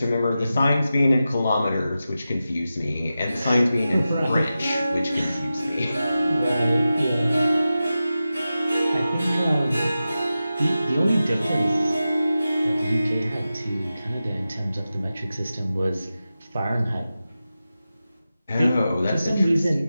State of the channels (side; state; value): both; inverted; correlation -0.93